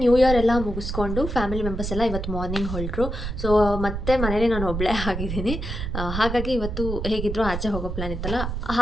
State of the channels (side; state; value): right; noise; rumble, 4 dB below the sound